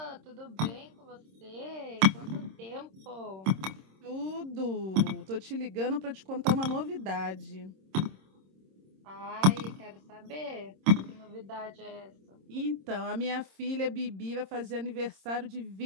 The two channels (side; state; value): left; late; 26 ms